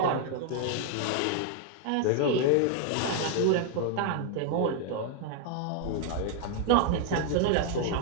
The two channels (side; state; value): both; different; correlation 0.00